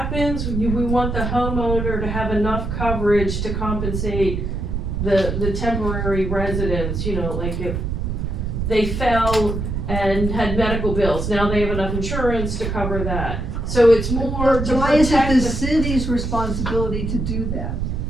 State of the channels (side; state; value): right; noise; rumble, 2 dB below the sound